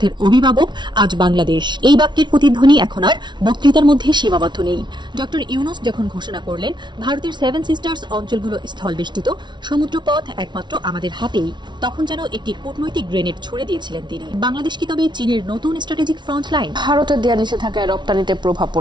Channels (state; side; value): late; left; 0.22 ms